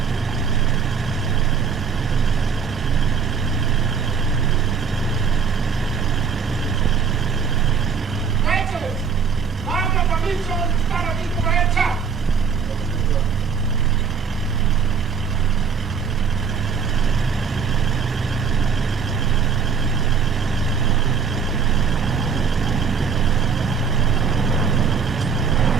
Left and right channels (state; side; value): quieter; left; 6.1 dB